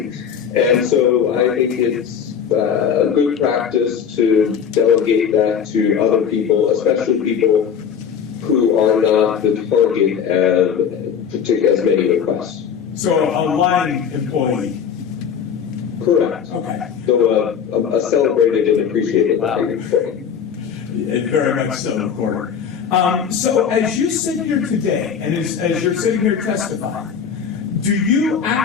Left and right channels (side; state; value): right; quieter; 7.5 dB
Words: and so I think it's a good practice to delegate that to other people, especially people who are not the target of as many requests. So a line employee. Correct. Okay. So a celebrated and appreciated line employee. Very much so, Recorder. So as you sit here today, and as you're sitting here testifying, do you